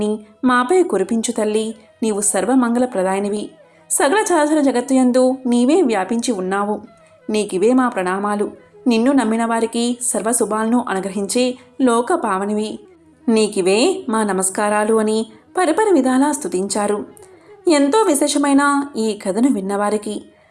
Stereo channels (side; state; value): both; identical; correlation 1.00